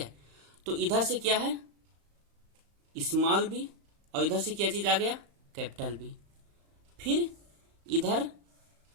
तो इधर से क्या है स्मॉल बी और इधर से क्या चीज आ गया, कैपिटल बी। फिर इधर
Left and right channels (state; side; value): late; left; 35 ms